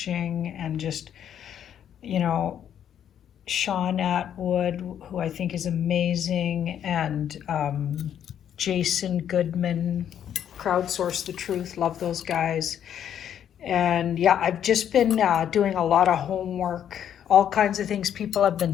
and just, you know, Sean Atwood, who I think is amazing, and Jason Goodman, Crowdsource the Truth, love those guys. And yeah, I've just been doing a lot of homework, all kinds of things people have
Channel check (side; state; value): right; quieter; 9.6 dB